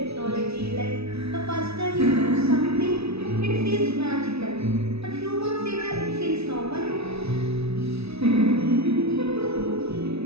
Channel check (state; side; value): late; left; 0.79 ms